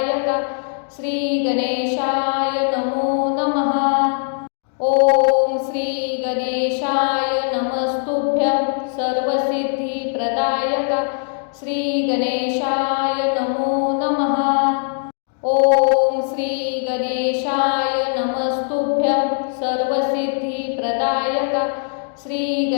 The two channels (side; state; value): right; silent; 66 dB below the other